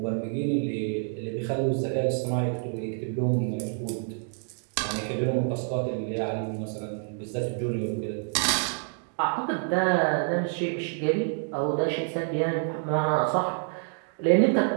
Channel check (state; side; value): silent; left; 56 dB below the other